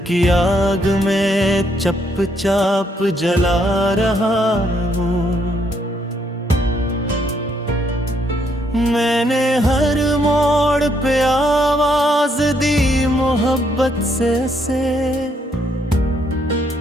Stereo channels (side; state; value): both; normal; correlation 0.73